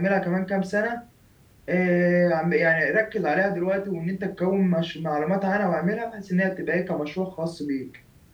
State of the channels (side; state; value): both; identical; correlation 1.00